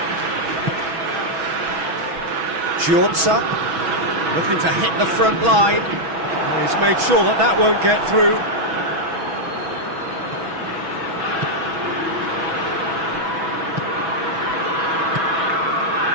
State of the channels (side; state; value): left; late; 6.1 ms